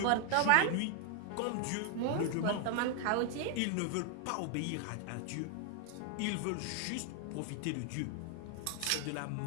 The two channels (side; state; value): both; different; correlation 0.00